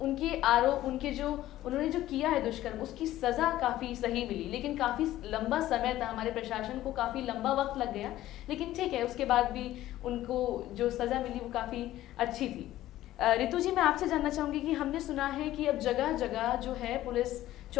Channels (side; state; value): right; quieter; 14.5 dB